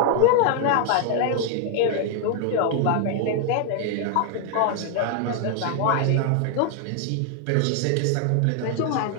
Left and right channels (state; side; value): different; both; correlation 0.00